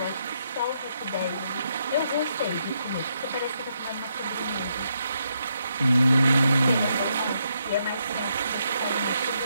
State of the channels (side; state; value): both; inverted; correlation -0.79